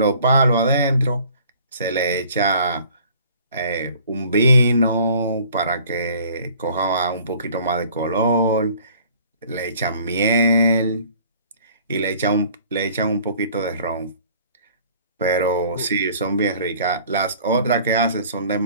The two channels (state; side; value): inverted; both; correlation -0.53